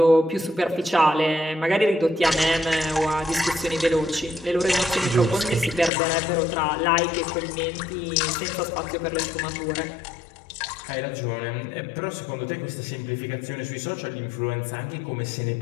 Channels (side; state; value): right; drops out; at 5.9 s